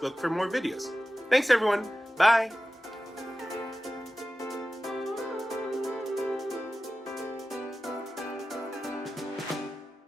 for more videos. Thanks everyone, bye!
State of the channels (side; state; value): both; normal; correlation 0.94